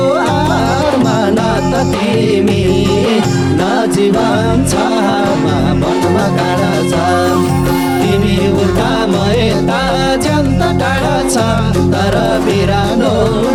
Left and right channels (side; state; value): both; identical; correlation 1.00